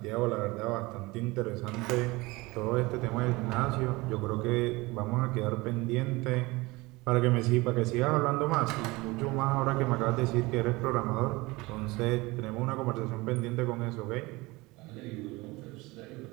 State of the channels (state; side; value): quieter; left; 22.4 dB